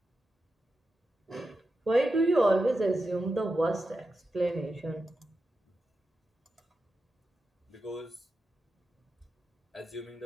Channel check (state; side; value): normal; both; correlation 0.90